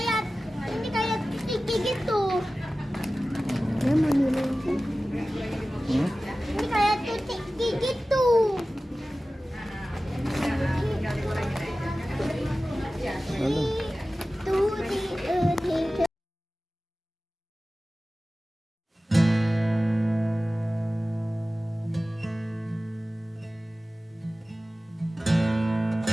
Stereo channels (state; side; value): normal; both; correlation 0.96